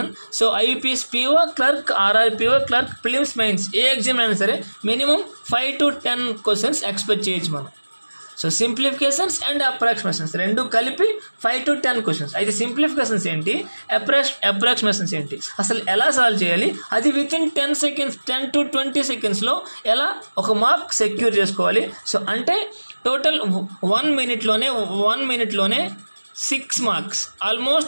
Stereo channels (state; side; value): inverted; both; correlation -1.00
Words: So IBPS PO clerk, RRB PO clerk, prelims mains ఏ ఎగ్జామ్ అయినా సరే మినిమం 5 to 10 క్వశ్చన్స్ ఎక్స్పెక్ట్ చేయొచ్చు మనం. సో సింప్లిఫికేషన్స్ అండ్ అప్రాక్సిమేషన్స్ రెండు కలిపి 5 to 10 క్వశ్చన్స్. అయితే సింప్లిఫికేషన్స్ ఏంటి, అప్రాక్సిమేషన్స్ ఏంటి, అసలు ఎలా సాల్వ్ చేయాలి, అది విత్ ఇన్ 10 సెకండ్స్ 10 to 20 సెకండ్స్లో ఎలా ఒక మార్క్ సెక్యూర్ చేసుకోవాలి. సో అంటే టోటల్ 1 మినిట్లోనే 6 మార్క్స్,